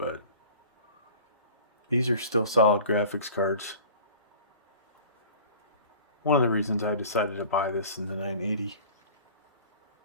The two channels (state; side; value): inverted; both; correlation -0.43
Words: these are still solid graphics cards. One of the reasons I decided to buy this in the 980.